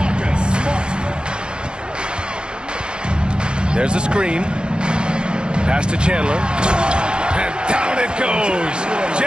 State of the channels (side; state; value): left; late; 0.050 ms